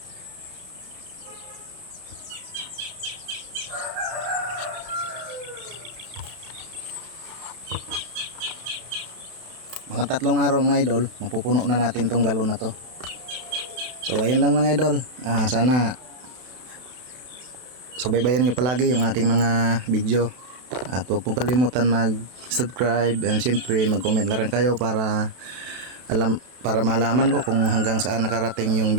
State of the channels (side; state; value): left; late; 32 ms